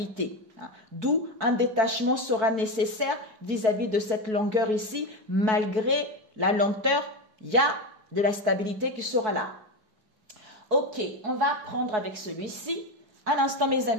D'où un détachement sera nécessaire vis-à-vis de cette longueur ici. Malgré la lenteur, il y a de la stabilité qui sera là. Ok, on va prendre avec celui-ci. À l'instant, mes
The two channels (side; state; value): left; late; 4.6 ms